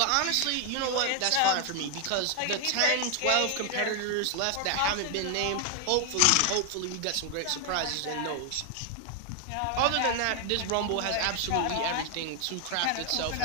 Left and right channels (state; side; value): different; both; correlation 0.00